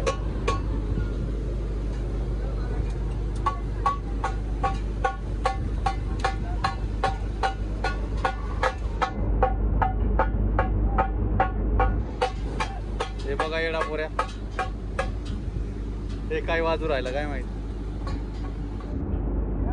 हे बघा येडा पोऱ्या, हे काय वाजू राहिलं काय माहित.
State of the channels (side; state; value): both; identical; correlation 1.00